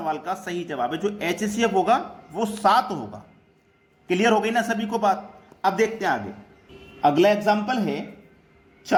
का सही जवाब है। जो HCF होगा वो 7 होगा। क्लियर हो गई ना सभी को बात। अब देखते हैं आगे अगला एग्जाम्पल है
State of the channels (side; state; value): both; identical; correlation 1.00